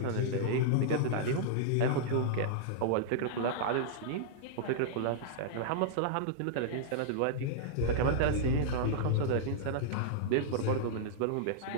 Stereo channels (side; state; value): both; different; correlation -0.02